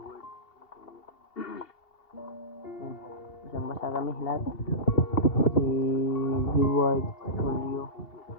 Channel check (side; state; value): right; late; 2.7 ms